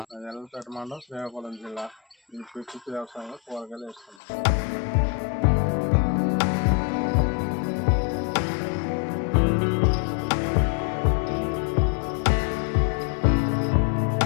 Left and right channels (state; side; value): drops out; right; at 4.2 s